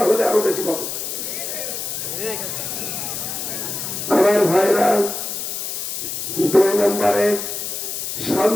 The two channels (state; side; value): noise; left; hiss, 4 dB below the sound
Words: হলে আরো বেশি পাবো। আমার ভাইরা, 2 নম্বরে